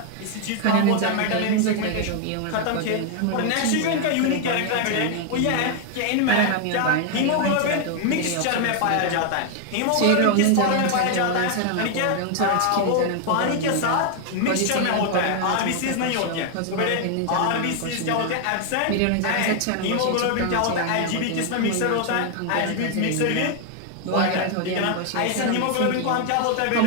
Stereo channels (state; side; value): different; both; correlation 0.00